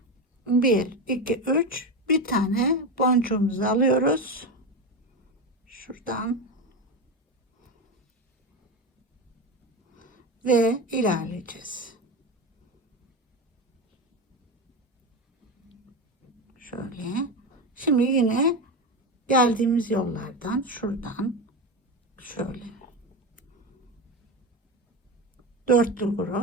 1, 2, 3. Bir tane boncuğumuzu alıyoruz. Şuradan. Ve ilerleyeceğiz. Şöyle. Şimdi yine geldiğimiz yollardan şuradan şöyle dörtlü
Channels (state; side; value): normal; both; correlation 0.18